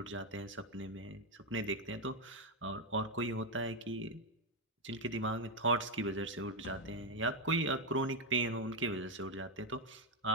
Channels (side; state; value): both; normal; correlation 0.04